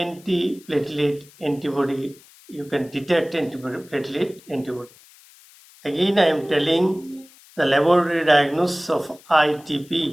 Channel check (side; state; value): left; noise; hiss, 25 dB below the sound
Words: antibody. You can detect platelet antibody. Again, I am telling the laboratory diagnosis of